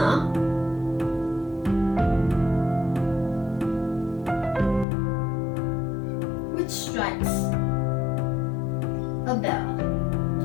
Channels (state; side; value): drops out; right; at 4.9 s